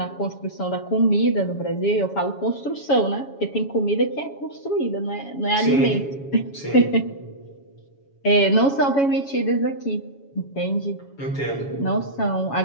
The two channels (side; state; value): right; late; 7.2 ms